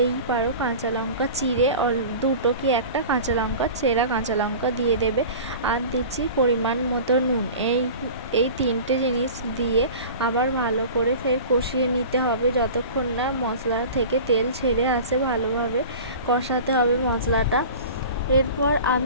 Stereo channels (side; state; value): both; inverted; correlation -0.37